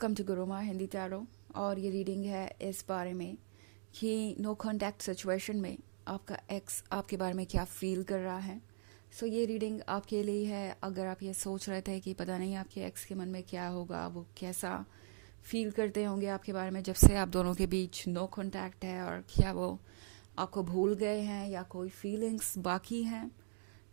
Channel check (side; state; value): left; silent; digital silence